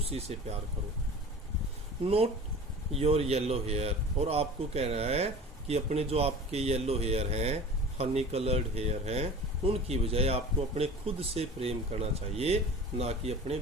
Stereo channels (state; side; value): normal; both; correlation 0.39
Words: से प्यार करो। नोट योर येलो हेयर, और आपको कह रहा है कि अपने जो आपके येलो हेयर हैं, हनी कलर्ड हेयर हैं, उनकी बजाय आपको अपने खुद से प्रेम करना चाहिए, ना कि अपने